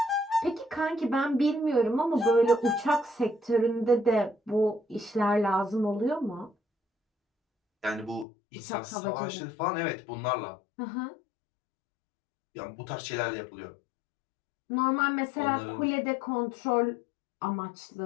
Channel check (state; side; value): drops out; right; at 8.2 s